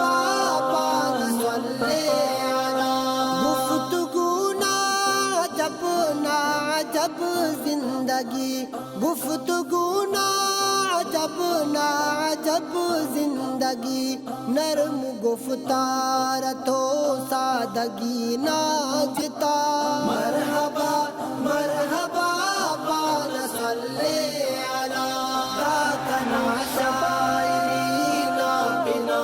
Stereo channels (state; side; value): identical; both; correlation 1.00